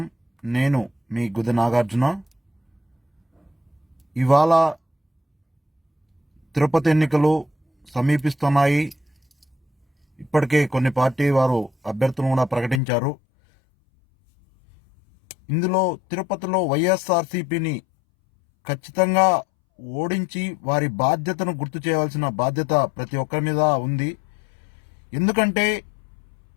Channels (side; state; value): right; drops out; at 12.8 s